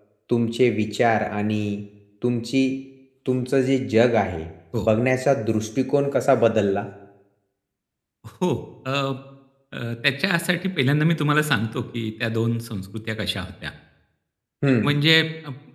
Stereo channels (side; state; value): both; identical; correlation 1.00